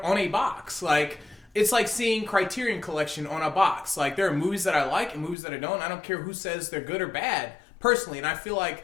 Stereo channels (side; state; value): right; drops out; at 5.4 s